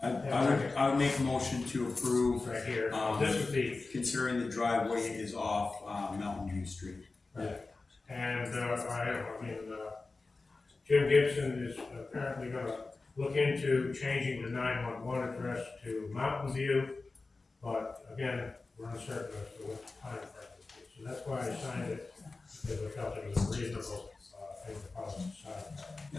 I would make a motion to approve, Right here, this is the, considering the driveway is off, Mountain View Street. and, Jim Gibson is apparently gonna look into changing the 911 address to Mountain View, but again, we're uncertain as to what time frame it is. So that's why I signed it, because I felt it was a reasonable, thing to follow the side.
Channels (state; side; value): quieter; right; 3.7 dB